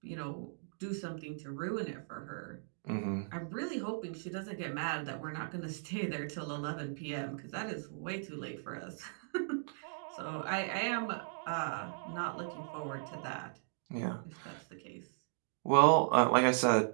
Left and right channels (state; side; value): silent; left; digital silence